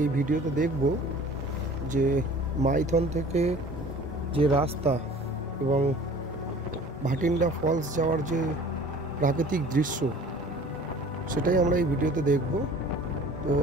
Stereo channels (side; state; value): both; normal; correlation 0.47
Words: ভিডিওতে দেখব যে মাইথন থেকে যে রাস্তা এবং ভাটিন্ডা ফলস যাওয়ার যে প্রাকৃতিক দৃশ্য সেটাই আমরা এই ভিডিওতে দেখব। তো